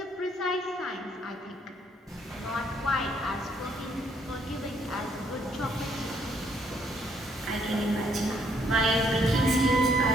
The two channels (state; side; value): normal; both; correlation 0.68